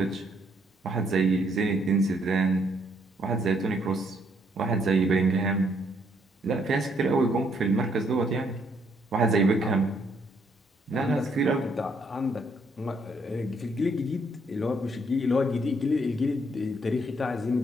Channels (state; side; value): normal; both; correlation 0.70